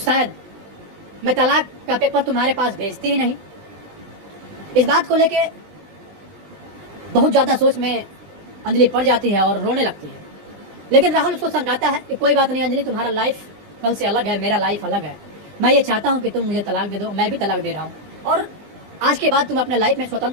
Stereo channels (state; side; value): late; left; 20 ms